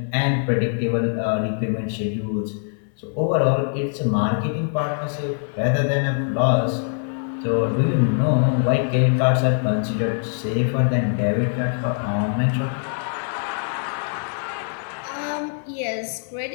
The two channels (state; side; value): silent; right; 63 dB below the other